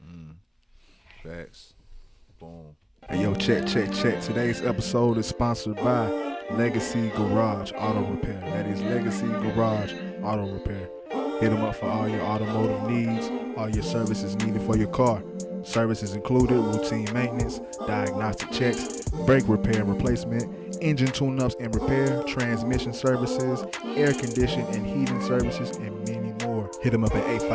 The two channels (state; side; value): identical; both; correlation 1.00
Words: Facts. Boom. Hey, yo, check. Today's episode is sponsored by Legacy Garage Auto Repair. That is Legacy Garage Auto Repair. Hit them up for all your automotive needs, all your services needed for your car. Services included routine maintenance, diagnostic checks, brake repair and replacement, engine tune-ups and repair, transmission services, air condition and heating services, and many more. Hit them up at